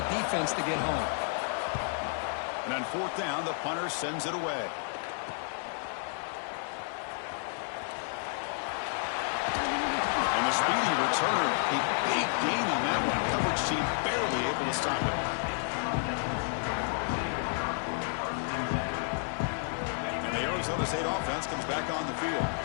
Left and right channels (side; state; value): right; silent; 57 dB below the other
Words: defense to get home. And on 4th down, the punter sends it away. And the speedy returner, a big gain on that one. Coverage team barely able to stop it. And the Arizona State offense comes back on the field.